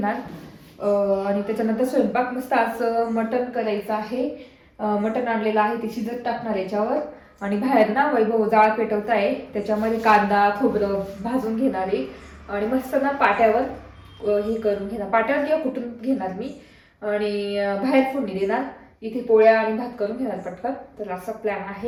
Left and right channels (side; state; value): both; identical; correlation 1.00